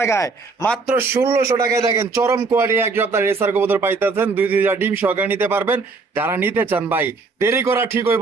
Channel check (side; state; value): left; quieter; 4.2 dB